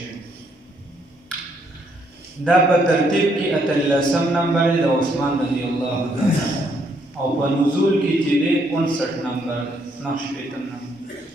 دا په ترتیب کې 18 نمبر د عثمان رضی الله تعالی او په نزول کې چې دی 59 نمبر نقشپیتم نمبر.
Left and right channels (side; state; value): both; normal; correlation 0.71